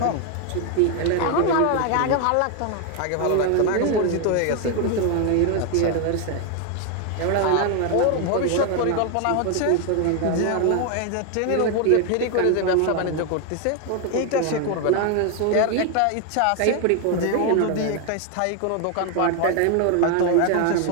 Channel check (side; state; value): both; different; correlation 0.01